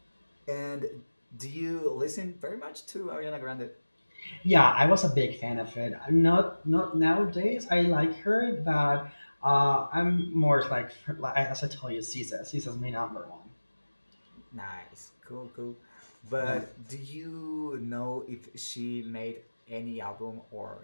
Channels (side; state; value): both; inverted; correlation -1.00